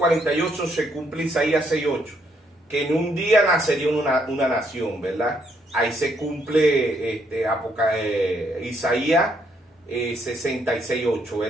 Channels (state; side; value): normal; both; correlation 0.72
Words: se cumple Isaías 6:8, que en un día nacería una nación, ¿verdad? Ahí se cumple Isaías 66:8,